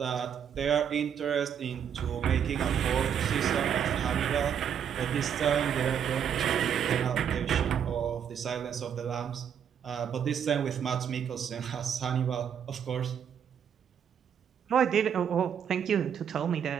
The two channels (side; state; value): left; quieter; 8.3 dB